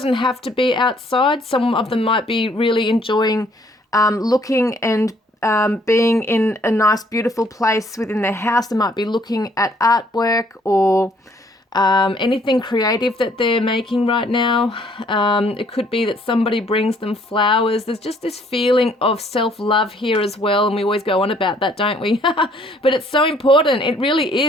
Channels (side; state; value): both; normal; correlation 0.63